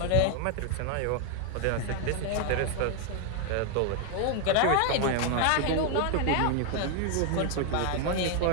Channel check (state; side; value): different; both; correlation 0.01